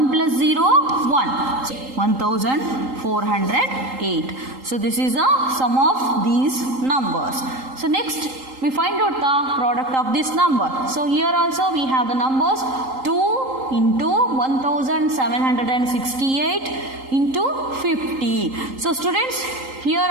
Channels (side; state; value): left; late; 3.8 ms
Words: plus 0, 1. So 1408. So this is the sum of these numbers. So next we find out the product of this number. So here also we have the numbers 2 into 1768 into 50. So students, here